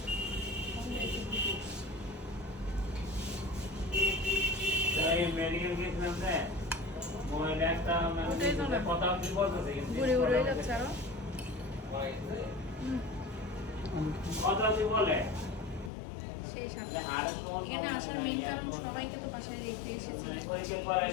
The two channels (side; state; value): right; drops out; at 15.9 s